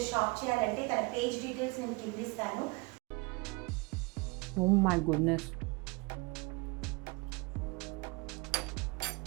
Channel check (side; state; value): left; quieter; 27.7 dB